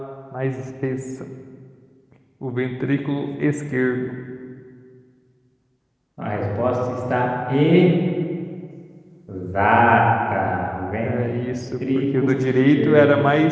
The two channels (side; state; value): both; identical; correlation 1.00